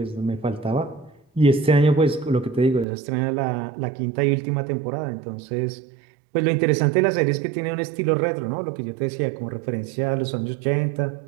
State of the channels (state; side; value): drops out; left; at 2.9 s